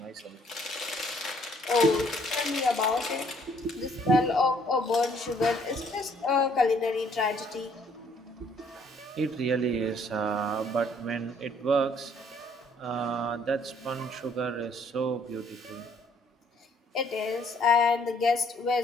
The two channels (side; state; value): both; normal; correlation 0.63